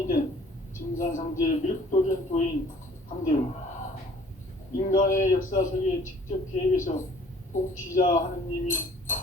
된 증산상제 밀도전 도인 강대우, 인간의 역사 속에 직접 개입해서 통치자 하느님이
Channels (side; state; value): both; normal; correlation 0.54